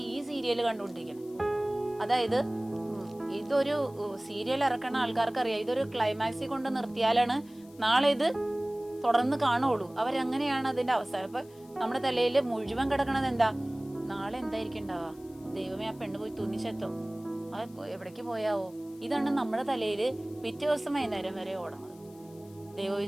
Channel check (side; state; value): left; noise; hiss, 27 dB below the sound